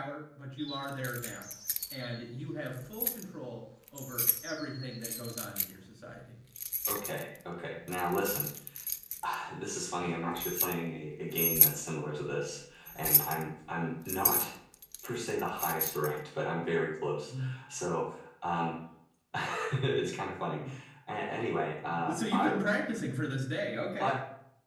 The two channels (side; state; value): both; identical; correlation 1.00